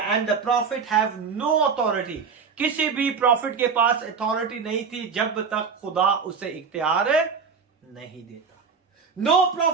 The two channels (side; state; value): left; quieter; 5.7 dB